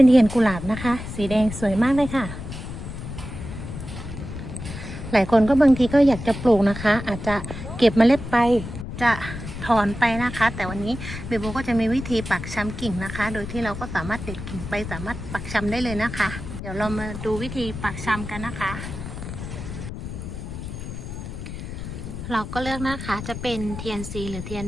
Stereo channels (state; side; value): noise; left; rumble, 8 dB below the sound